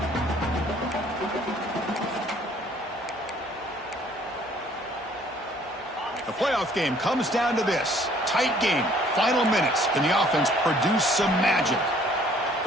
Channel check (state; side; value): normal; both; correlation 0.59